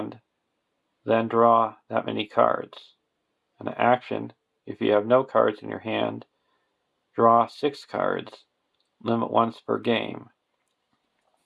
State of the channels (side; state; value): both; identical; correlation 1.00